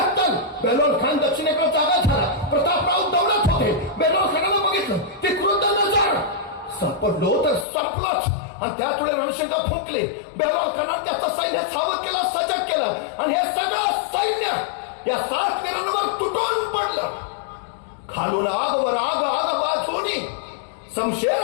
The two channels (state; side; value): drops out; right; at 7.7 s